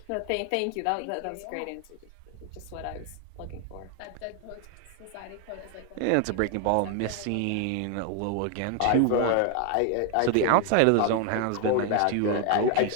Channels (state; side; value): different; both; correlation 0.01